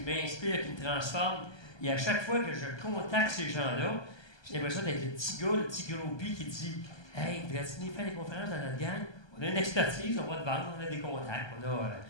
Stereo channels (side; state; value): right; late; 1.3 ms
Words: qui me transforment. Et à chaque fois que je contacte ces gens-là, j'ai l'impression d'être le petit gars, le petit groupie qui dit « Hey, voudrais-tu venir faire des conférences dans notre gang? On a une expertise, on va te vendre, on a des contacts,